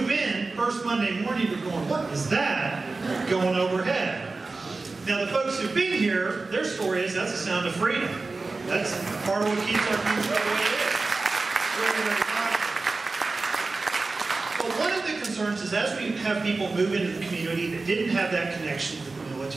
in, first Monday morning, you're going, what is that going overhead? Now, the folks who've been here, their story is that's the sound of freedom. That's part of what keeps our community the way it is. Very, very powerful. But one of the concerns is as we have people move into the community that didn't have that connection with the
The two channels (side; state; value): left; quieter; 3.7 dB